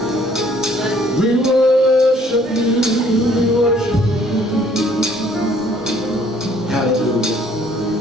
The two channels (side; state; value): both; normal; correlation 0.60